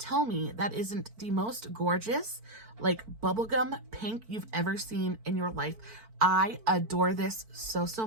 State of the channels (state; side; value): late; left; 4.5 ms